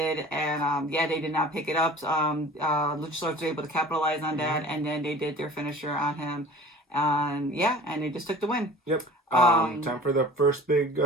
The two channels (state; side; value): normal; both; correlation 0.44